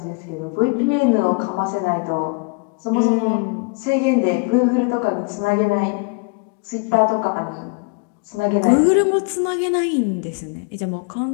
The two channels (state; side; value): quieter; right; 31.5 dB